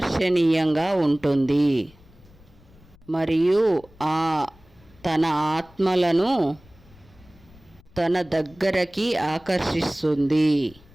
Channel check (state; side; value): noise; left; rumble, 26 dB below the sound